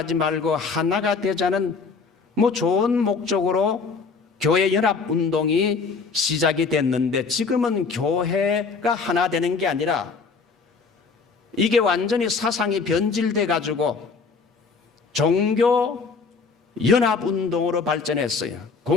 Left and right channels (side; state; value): right; quieter; 4.8 dB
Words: 말고 하나가 되자는 좋은 목적으로 교회 연합 운동이 시작이 됐는데 지금은 교회가 하나 되는 게 아니라 이게 완전히 사상이 변질돼 가지고 종교 연합 운동으로 발전했어요.